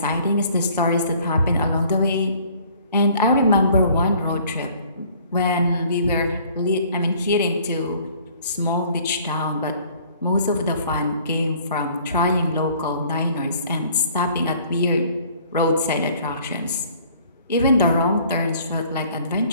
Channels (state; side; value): inverted; both; correlation -0.56